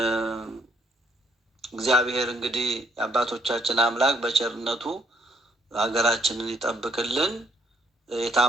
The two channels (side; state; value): both; normal; correlation 0.69